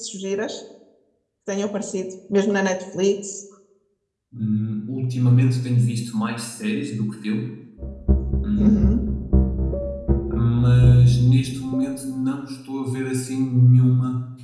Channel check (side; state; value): both; identical; correlation 1.00